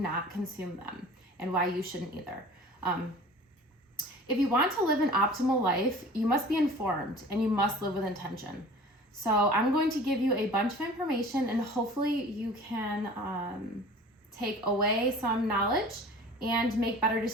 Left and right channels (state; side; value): normal; both; correlation 0.43